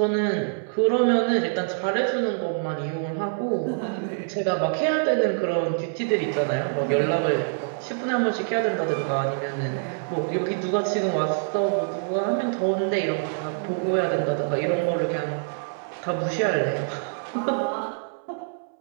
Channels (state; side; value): silent; left; 61 dB below the other